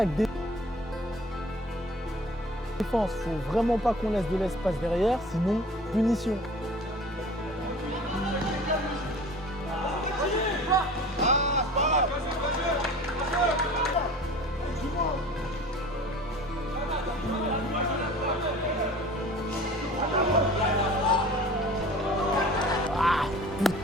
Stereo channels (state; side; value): normal; both; correlation 0.43